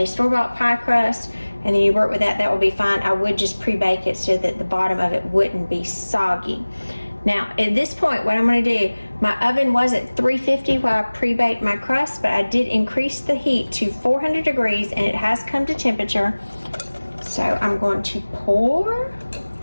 store-bought pie crust and then you work with that, that would be fine. I would just pre-bake it so that the bottom of it wouldn't be soggy. Now, at this point, what I'm going to do, my oven was at 350 while I pre-baked my crust, but I did increase the heat to 400 degrees, and it has come to temperature. So I'm going to pour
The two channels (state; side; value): inverted; both; correlation -1.00